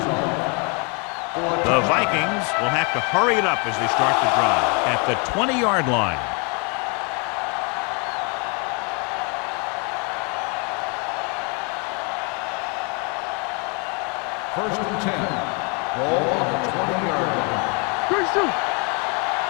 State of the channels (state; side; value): quieter; right; 34.2 dB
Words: The Vikings will have to hurry it up as they start the drive at the 20-yard line. First and 10. Ball on the 20-yard line.